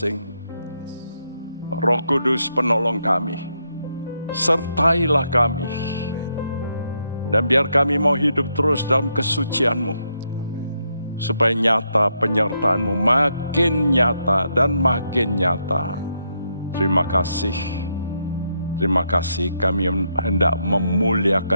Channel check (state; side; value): inverted; both; correlation -0.79